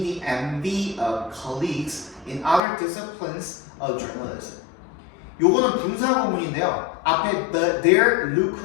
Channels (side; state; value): right; drops out; at 2.6 s